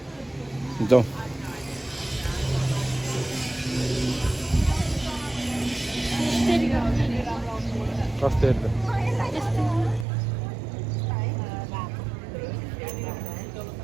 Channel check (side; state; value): left; drops out; at 10.1 s